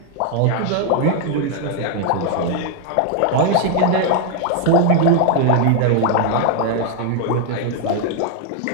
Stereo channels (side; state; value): both; different; correlation 0.00